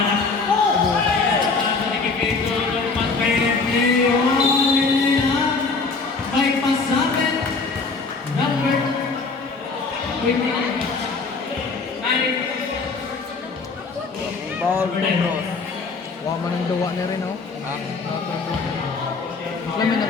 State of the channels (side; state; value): right; quieter; 4.2 dB